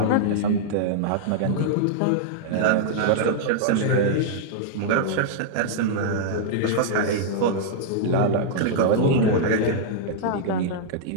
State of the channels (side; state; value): both; different; correlation -0.01